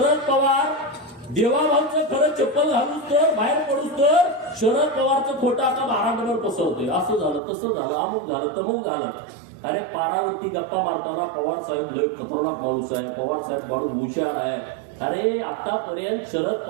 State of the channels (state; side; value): drops out; left; at 7.4 s